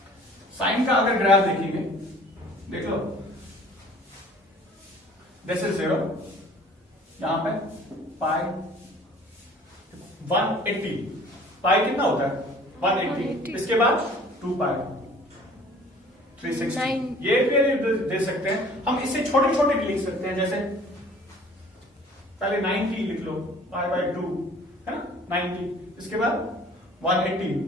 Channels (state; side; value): normal; both; correlation 0.51